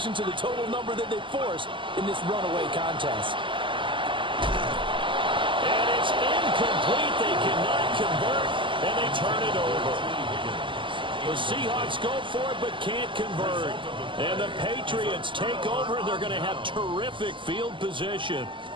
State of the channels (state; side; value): late; left; 0.24 ms